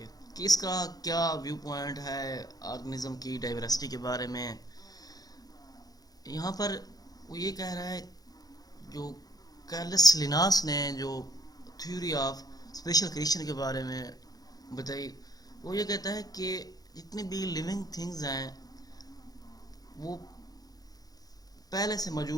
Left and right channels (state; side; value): late; right; 0.19 ms